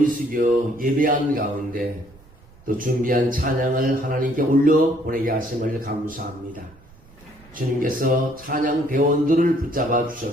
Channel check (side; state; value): right; noise; rumble, 26 dB below the sound